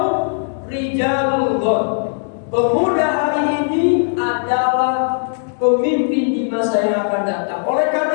rijalul ghad, pemuda hari ini adalah pemimpin di masa yang akan datang. Oleh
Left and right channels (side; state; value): right; silent; digital silence